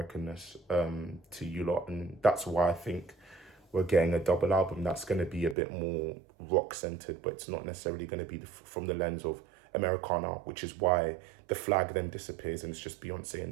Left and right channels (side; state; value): left; drops out; at 5.6 s